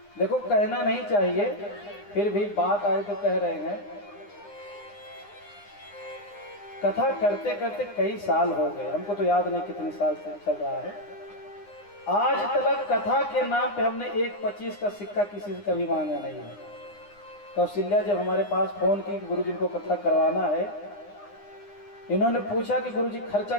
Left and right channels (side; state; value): right; late; 9.8 ms